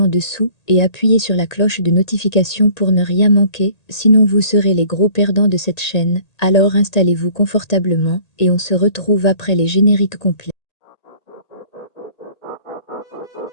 dessous et appuyez sur la cloche de notification pour ne rien manquer, sinon vous serez les gros perdants de cette chaîne. Alors installez-vous confortablement et on se retrouve après les génériques complets.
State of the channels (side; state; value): right; late; 1.8 ms